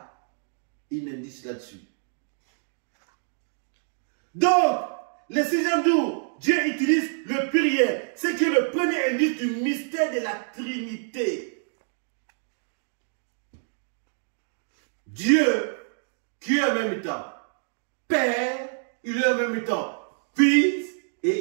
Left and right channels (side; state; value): left; silent; digital silence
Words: un indice là-dessus. Donc, le 6e jour, Dieu utilise le pluriel. C'est qui est le premier indice du mystère de la Trinité. Dieu, qui est en même temps Père, il est en même temps Fils,